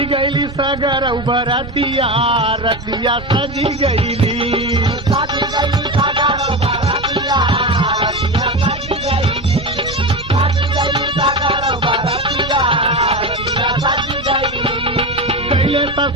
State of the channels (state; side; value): noise; left; rumble, 21 dB below the sound